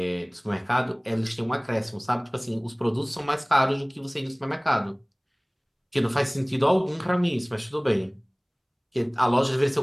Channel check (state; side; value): identical; both; correlation 1.00